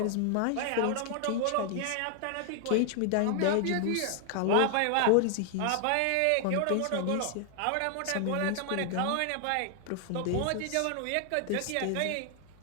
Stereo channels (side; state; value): both; different; correlation 0.00